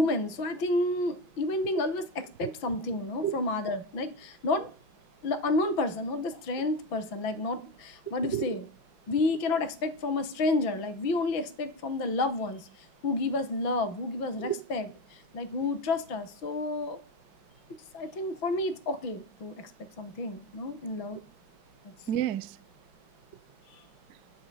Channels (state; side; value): late; right; 6.0 ms